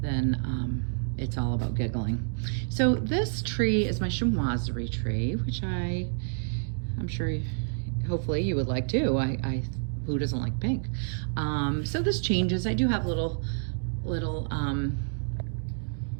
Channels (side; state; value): left; silent; digital silence